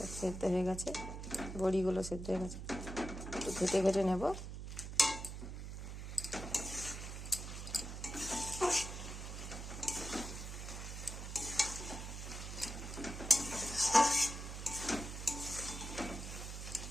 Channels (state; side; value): noise; right; hum, 7 dB below the sound